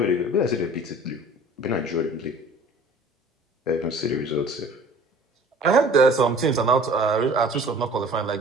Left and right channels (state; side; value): normal; both; correlation 0.48